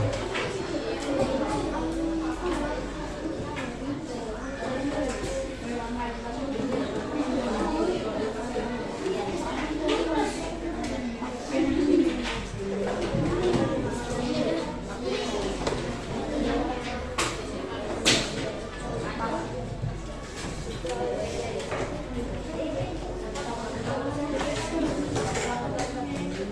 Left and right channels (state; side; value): identical; both; correlation 1.00